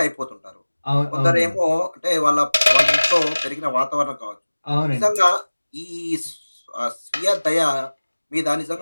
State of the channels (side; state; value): both; inverted; correlation -1.00